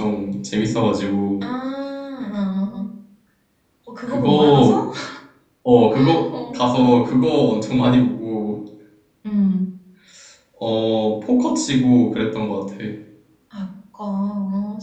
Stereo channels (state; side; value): identical; both; correlation 1.00